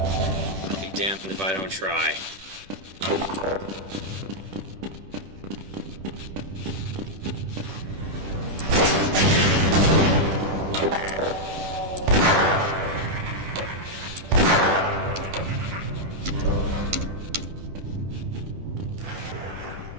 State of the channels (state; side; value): late; left; 10 ms